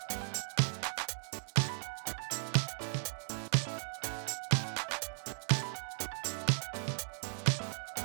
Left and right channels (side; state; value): left; silent; digital silence